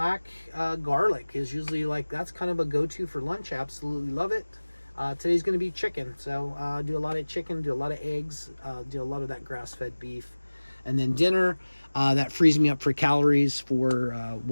garlic is usually that's kind of a go-to for lunch. Absolutely love it. Today's going to be chicken, so do a lot of chicken, do a lot of eggs, do a lot of that grass-fed beef. And then dinner, that frees me up for calories for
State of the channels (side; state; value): both; inverted; correlation -1.00